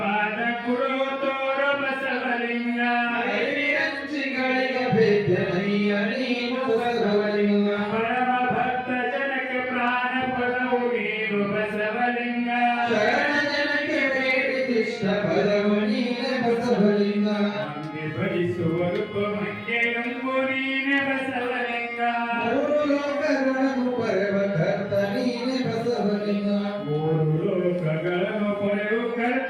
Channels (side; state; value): both; identical; correlation 1.00